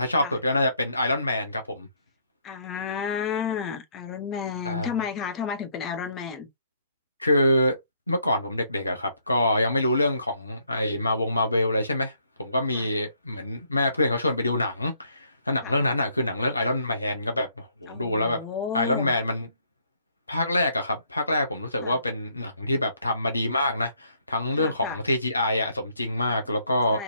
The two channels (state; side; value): inverted; both; correlation -0.69